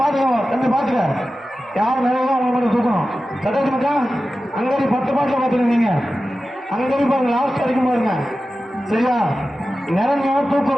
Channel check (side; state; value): both; normal; correlation 0.94